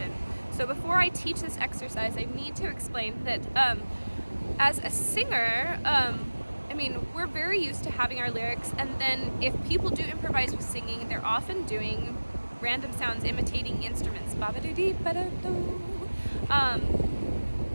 So before I teach this exercise, I need to explain that as a singer, we're very used to having our lyrics, and then if people do improvise with singing, they're often doing random sounds imitating instruments.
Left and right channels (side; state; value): both; inverted; correlation -1.00